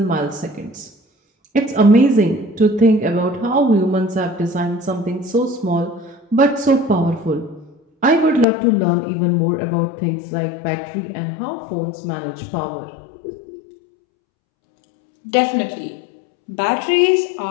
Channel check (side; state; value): right; drops out; at 8.5 s